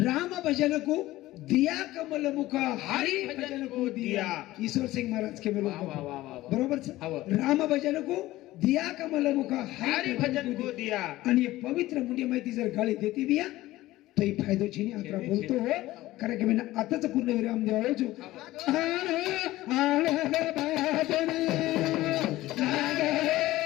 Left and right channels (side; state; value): right; quieter; 16.8 dB